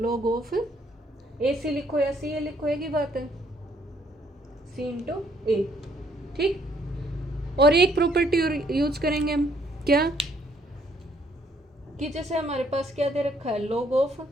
ऑफ AC लिखो या CA लिखो, एक ही बात है, C इंटू A। ठीक, और एक प्रॉपर्टी और यूज करेंगे हम, क्या कि जैसे हमारे पास क्या दे रखा है, log of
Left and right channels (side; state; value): both; normal; correlation 0.67